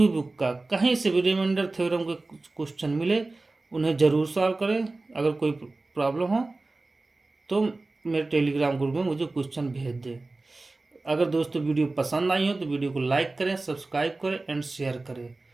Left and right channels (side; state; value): left; quieter; 3.2 dB